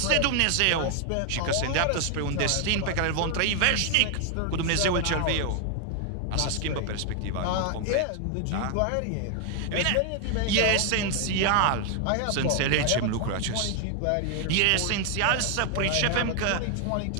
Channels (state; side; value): different; both; correlation 0.00